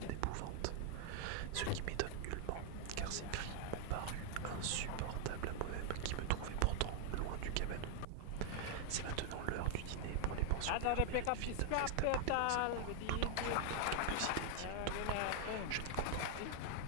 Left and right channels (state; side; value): different; both; correlation 0.00